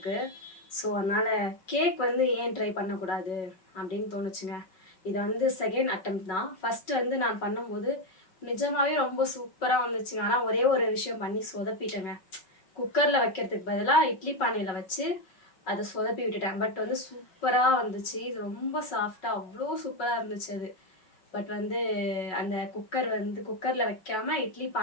ஸோ அதனால் கேக் வந்து ஏன் ட்ரை பண்ணக்கூடாது அப்படின்னு தோணுச்சுங்க. இது வந்து செகண்ட் அட்டெம்ப்ட் தான். ஃபஸ்ட்டு வந்து நான் பண்ணும்போது நிஜமாகவே ரொம்ப சூப்பராக வந்துச்சுங்க. ஆனால் ஒரே ஒரு விஷயம் பண்ணி சொதப்பிட்டேங்க. குக்கரில் வைக்கிறதுக்கு பதிலாக இட்லி பானையில் வச்சு அதை சொதப்பி விட்டுட்டேன். பட் வந்து சூப்பராக வந்துச்சு. இது ரொம்ப சாஃப்டாக அவ்வளோ சூப்பராக இருந்துச்சு அது. பட் வந்து அந்த குக்கரில் வைக்காமல் இட்லி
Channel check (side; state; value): right; late; 5.4 ms